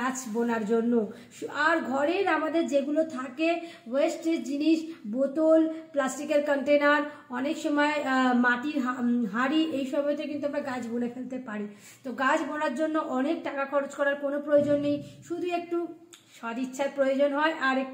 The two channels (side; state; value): both; identical; correlation 1.00